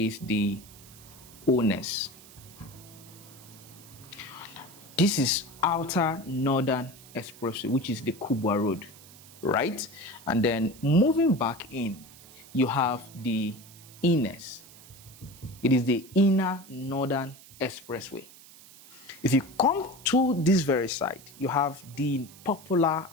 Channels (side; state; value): right; noise; hiss, 20 dB below the sound